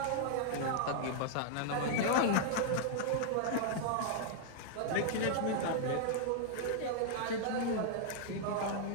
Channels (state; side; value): different; both; correlation -0.01